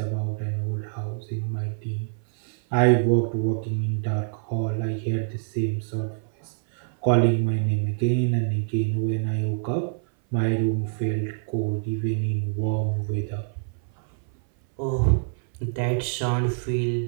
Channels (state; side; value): silent; left; 59 dB below the other